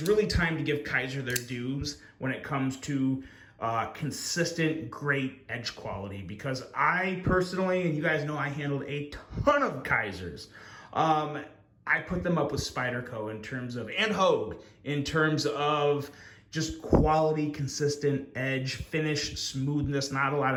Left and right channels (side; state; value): both; identical; correlation 1.00